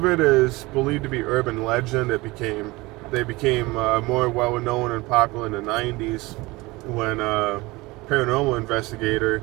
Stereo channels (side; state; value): left; quieter; 22.0 dB